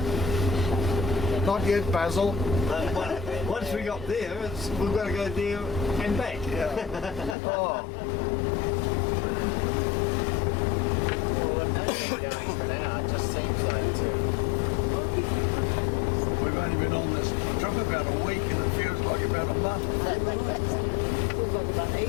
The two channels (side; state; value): right; drops out; at 7.4 s